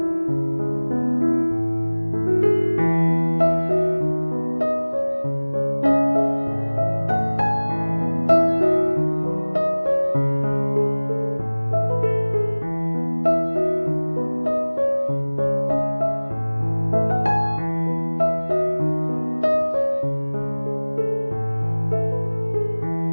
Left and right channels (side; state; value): both; inverted; correlation -1.00